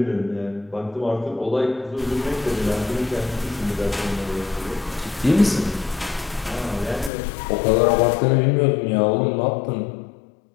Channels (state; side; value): drops out; right; at 7.1 s